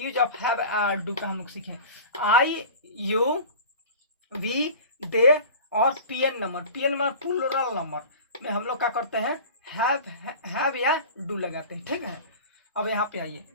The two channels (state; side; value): inverted; both; correlation -0.37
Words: ऑफ हैव डू का हम लोग सीखें। आई, यू, वी, दे और PN number, PN number plural number में हम लोग क्या करते हैं, हैव या डू लगाते हैं। ठीक है, अब यहाँ पे आइए,